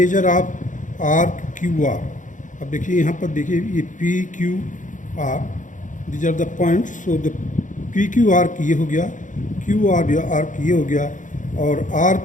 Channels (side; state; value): right; late; 0.37 ms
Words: of arc QR. अब देखिए यहाँ पर देखिए ये PQR, these are the points. So the PQ arc ये हो गया, QR arc ये हो गया और